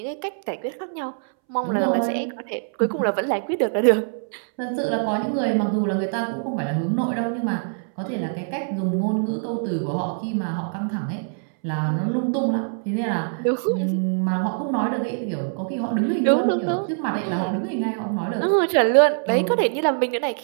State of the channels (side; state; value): left; silent; 63 dB below the other